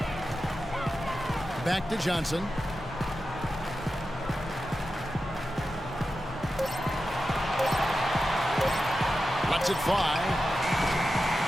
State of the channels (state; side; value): normal; both; correlation 0.91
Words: Back to Johnson. Lets it fly.